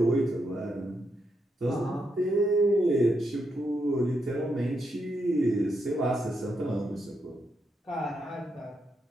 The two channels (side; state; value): both; normal; correlation 0.81